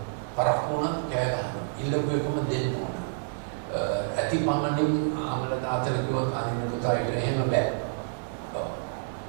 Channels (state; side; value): silent; left; digital silence